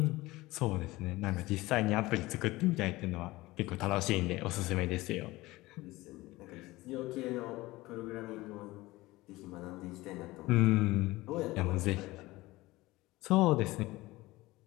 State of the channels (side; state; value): right; quieter; 19.6 dB